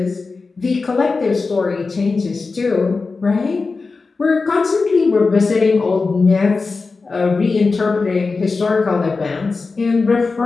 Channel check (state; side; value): quieter; right; 4.1 dB